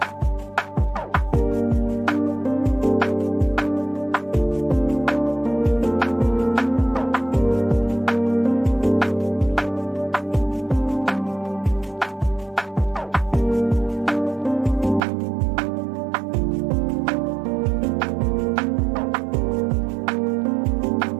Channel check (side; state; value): left; drops out; at 15.1 s